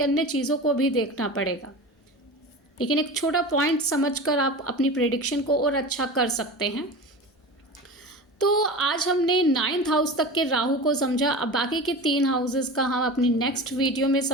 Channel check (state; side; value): normal; both; correlation 0.31